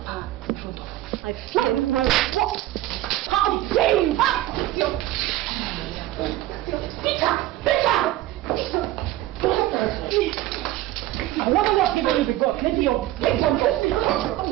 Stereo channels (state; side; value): quieter; left; 15.3 dB